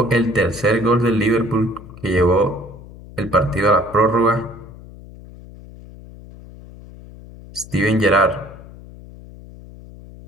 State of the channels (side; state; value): left; noise; hum, 18 dB below the sound